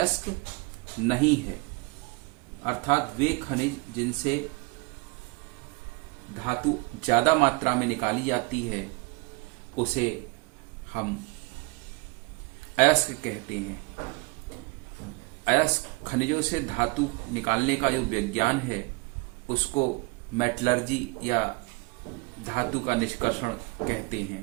नहीं है। अर्थात वे खनिज जिनसे धातु ज्यादा मात्रा में निकाली जाती है उसे हम अयस्क कहते हैं। अयस्क खनिजों से धातु निकालने का जो विज्ञान है उसको मेटलर्जी या धातु का निष्कर्षण कहते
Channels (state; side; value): quieter; left; 26.9 dB